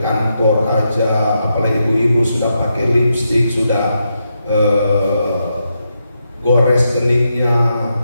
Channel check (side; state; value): both; inverted; correlation -0.83